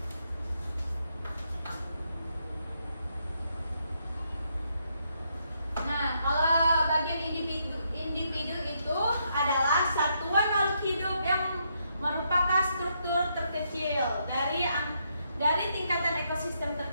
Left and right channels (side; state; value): both; inverted; correlation -0.77